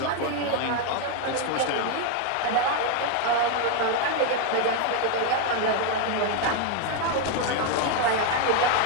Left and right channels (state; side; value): different; both; correlation 0.01